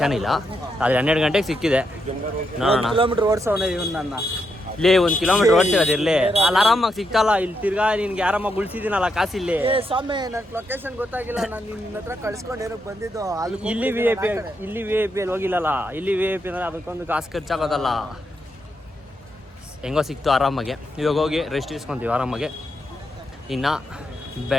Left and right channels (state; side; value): normal; both; correlation 0.82